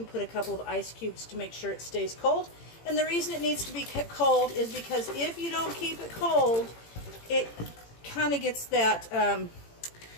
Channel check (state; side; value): late; right; 18 ms